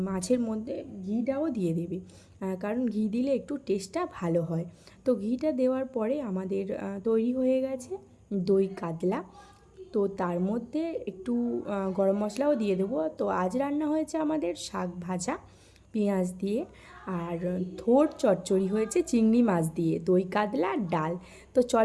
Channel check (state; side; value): identical; both; correlation 1.00